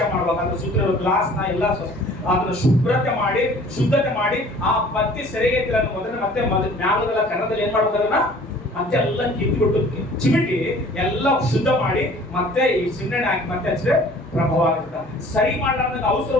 ಮಾಡ್ಬೇಕು. ಅದ್ರ ಸುತ್ತ ಗ್ಲಾಸ್ ನ ಎಲ್ಲ ಅದನ್ನ ಶುದ್ಧತೆ ಮಾಡಿ ಆ ಬತ್ತಿ ಸೆರೆಗೆ ಮತ್ತೆ ಮ್ಯಾಲದೆಲ್ಲ ಕನ್ನಡದಲ್ಲಿ ಏನ್ ಮಾಡ್ಬೇಕು, ಅದನ್ನ ಮತ್ತೆ ಎಲ್ಲ ಕಿತ್ಬಿಟ್ಟು ಚಿಮಿಟಿ ಎಲ್ಲ ಶುದ್ಧ ಮಾಡಿ ಮತ್ತೆ ಈ ಸಿಂಗಣ್ಣೆ ಹಾಕಿ ಮತ್ತೆ ಹಚ್ಚಿದ್ರೆ ಪ್ರಭಾವ ಆಗುತ್ತೆ. ಸರಿ ಮಾಡ್ಲಾರ್ದ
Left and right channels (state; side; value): normal; both; correlation 0.50